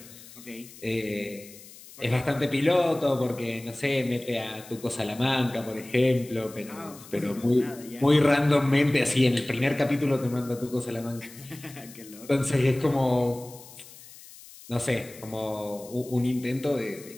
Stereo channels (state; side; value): noise; left; hiss, 19 dB below the sound